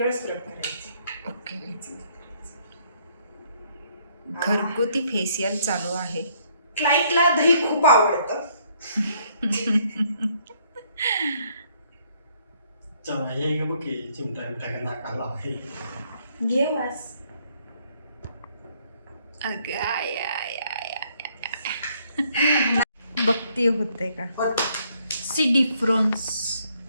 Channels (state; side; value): inverted; both; correlation -0.67